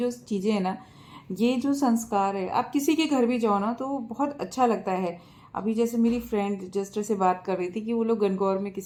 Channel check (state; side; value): identical; both; correlation 1.00